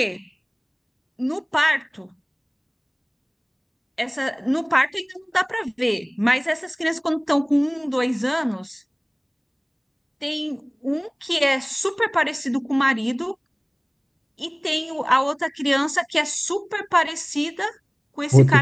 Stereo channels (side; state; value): both; identical; correlation 1.00